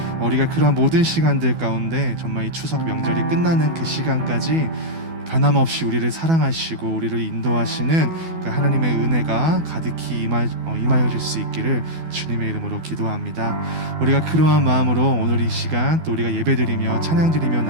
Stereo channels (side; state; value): left; late; 12 ms